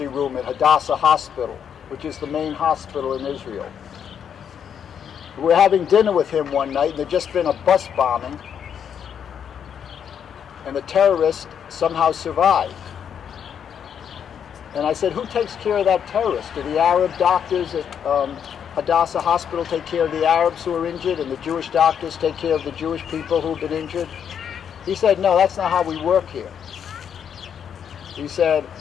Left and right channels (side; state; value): right; quieter; 8.1 dB